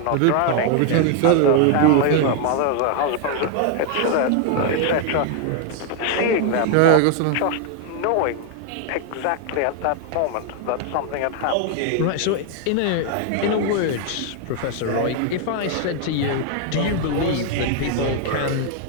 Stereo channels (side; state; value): both; different; correlation 0.00